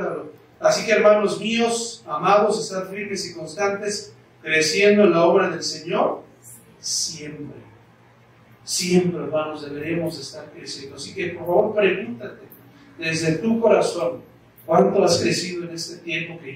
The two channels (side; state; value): both; identical; correlation 1.00